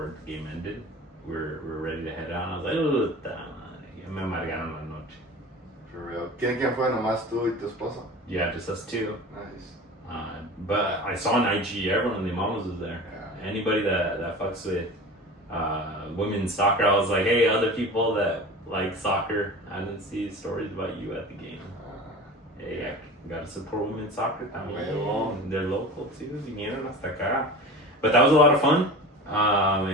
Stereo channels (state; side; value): normal; both; correlation 0.35